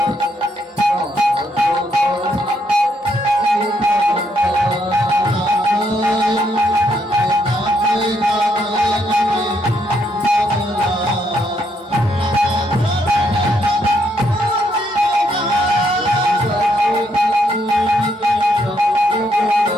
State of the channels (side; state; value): both; normal; correlation 0.74